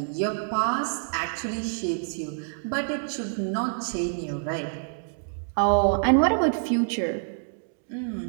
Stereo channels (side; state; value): left; silent; digital silence